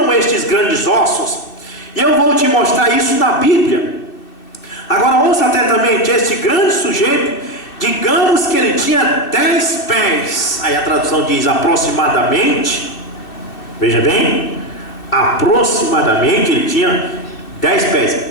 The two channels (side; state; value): right; late; 2.6 ms